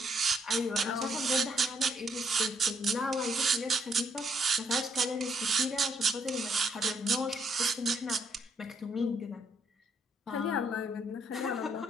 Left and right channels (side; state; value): both; normal; correlation 0.71